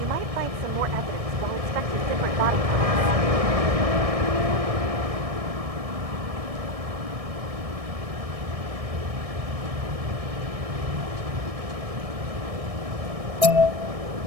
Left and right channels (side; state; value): left; late; 1.6 ms